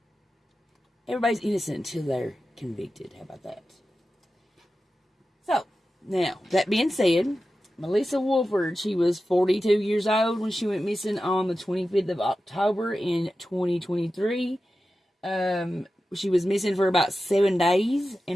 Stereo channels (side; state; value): both; normal; correlation 0.93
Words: everybody's innocent until they're convicted. How about that? So, now, that being said, Melissa Wolford, she was 42 years old when she went missing on the 25th of October in 2023. She was missing for about 7 days,